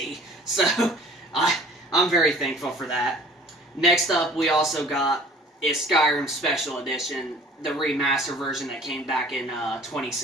So I'm very thankful for that. Next up, we also got is Skyrim Special Edition, the remaster version that came back in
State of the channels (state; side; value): normal; both; correlation 0.49